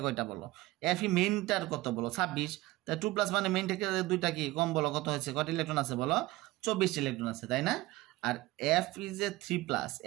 কয়টা বলো এফি মেইনটার কত বলো 26 তা 2 প্লাস মানে মেইন থেকে দুইটা কি কম বলো কত হয়েছে কত ইলেকট্রন আছে বলো 24 ইলেকট্রন আছে তাই না আর এফ ইজ এ 3 প্লাস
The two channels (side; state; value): left; quieter; 19.1 dB